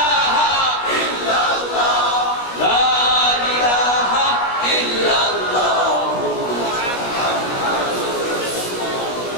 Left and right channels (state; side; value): late; right; 17 ms